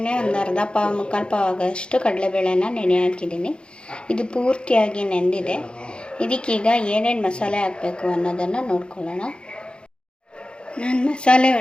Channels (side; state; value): right; late; 0.054 ms